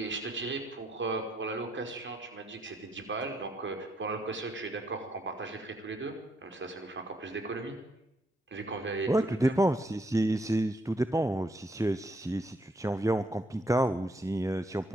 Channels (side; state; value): both; normal; correlation 0.74